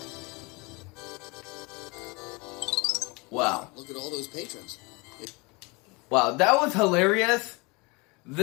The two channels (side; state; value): right; quieter; 27.2 dB